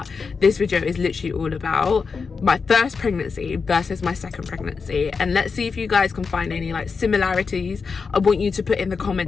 this video is literally all about my first pregnancy versus my second pregnancy, and let's see if you guys can find any like similarities. I want you to put in the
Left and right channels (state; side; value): quieter; right; 5.1 dB